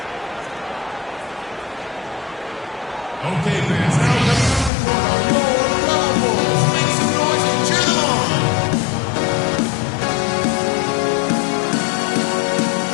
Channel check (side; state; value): right; drops out; at 4.7 s